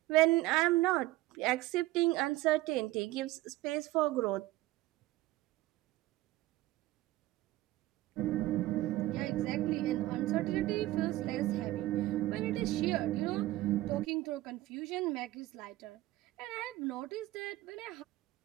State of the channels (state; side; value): quieter; left; 17.0 dB